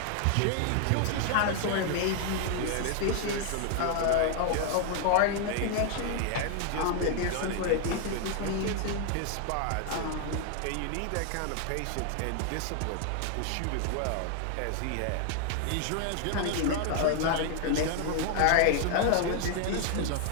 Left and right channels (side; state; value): both; different; correlation 0.00